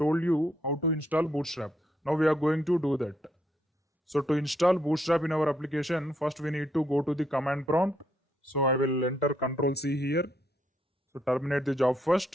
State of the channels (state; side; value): normal; both; correlation 0.75